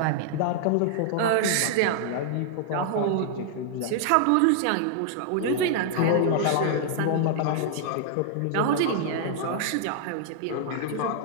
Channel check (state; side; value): different; both; correlation -0.01